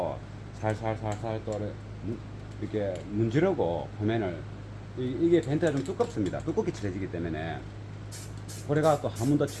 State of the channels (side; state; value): both; identical; correlation 1.00